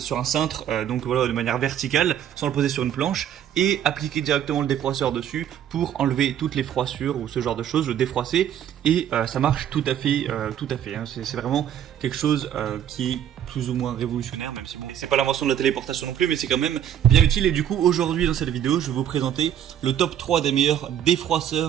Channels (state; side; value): quieter; left; 10.1 dB